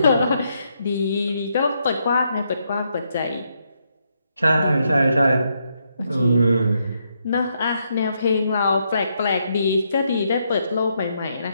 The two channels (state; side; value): inverted; both; correlation -0.78